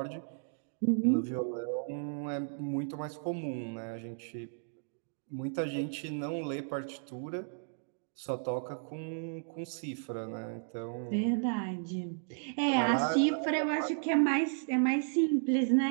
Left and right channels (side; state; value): left; silent; digital silence